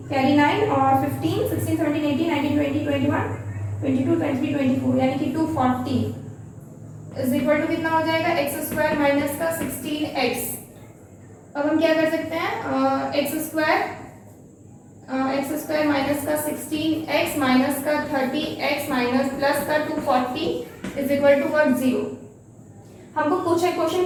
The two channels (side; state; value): both; identical; correlation 1.00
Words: कैरी 9 और 15 16 17 18 19 20 21 22 23 24 यानी कि 240 इज इक्वल टू कितना हो जाएगा, एक्स स्क्वायर माइनस का 16x। अब हम क्या कर सकते हैं, एक्स स्क्वायर माइनस का 16x माइनस का 30x माइनस प्लस का 240 इज इक्वल टू व्हाट, 0। हमको कुछ